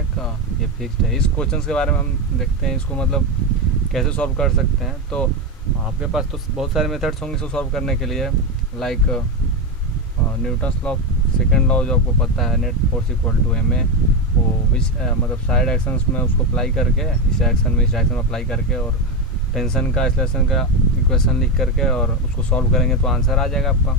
ये फिक्स्ड है। इस क्वेश्चन के बारे में हम देखते हैं इसको मतलब कैसे सॉल्व कर सकते हैं। तो आपके पास तो बहुत सारे मेथड्स होंगे इसको सॉल्व करने के लिए, like Newton's law, second law जो आपको पता है, net force equal to m a, वो विच मतलब साइड एक्शंस में उसको अप्लाई करके, इस डायरेक्शन में इस डायरेक्शन में अप्लाई करके, और टेंशन का एक्सेलरेशन का इक्वेशन लिख करके और उसको सॉल्व करेंगे तो आंसर आ जाएगा आपका।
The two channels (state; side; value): normal; both; correlation 0.12